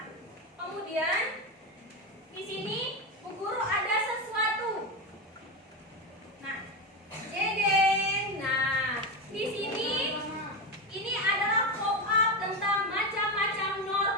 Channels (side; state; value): both; normal; correlation 0.15